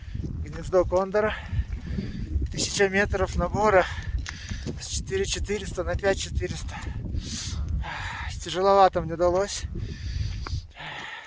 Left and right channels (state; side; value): identical; both; correlation 1.00